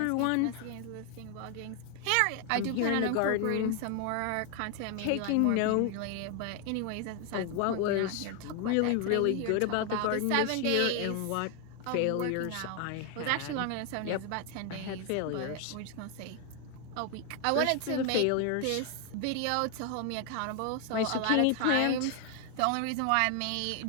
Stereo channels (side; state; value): both; different; correlation 0.00